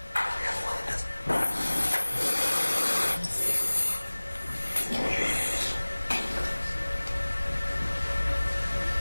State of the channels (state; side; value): inverted; both; correlation -1.00